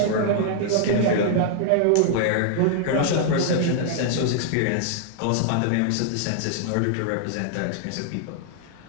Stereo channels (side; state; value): both; different; correlation -0.01